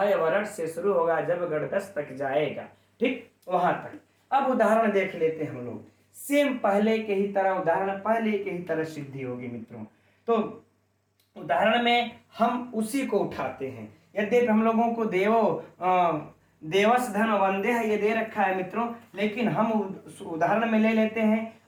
वर्ण से शुरू होगा, जब गणदस तक जाएगा, ठीक वहां तक। अब उदाहरण देख लेते हैं हम लोग, सेम पहले के ही तरह, उदाहरण पहले के ही तरह सिद्धि होगी मित्रों। तो उदाहरण में हम उसी को उठाते हैं। यद्यपि हम लोगों को देवस धन वंदे है ये दे रखा है मित्रों, लेकिन हम उदाहरण में ले लेते हैं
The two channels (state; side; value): identical; both; correlation 1.00